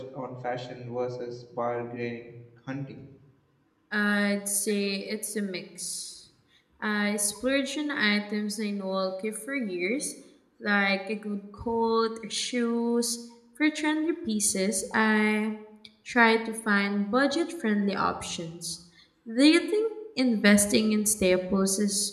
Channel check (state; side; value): identical; both; correlation 1.00